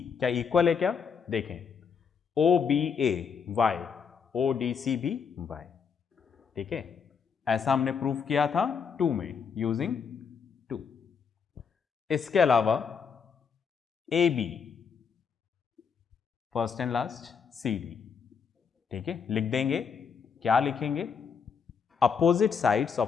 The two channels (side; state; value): right; quieter; 6.3 dB